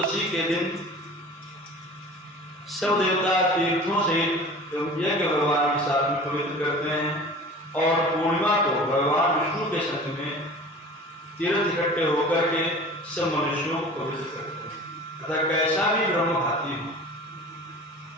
के दिन सब देवता तीर्थों से यज्ञ भगवान के साथ में पवित्र करते हैं और पूर्णिमा को भगवान विष्णु के संग में तीर्थ इकट्ठे होकर के सब मनुष्यों को पवित्र करते हैं। अतः कैसा भी ब्रह्मघाती हो,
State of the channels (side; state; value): both; normal; correlation 0.41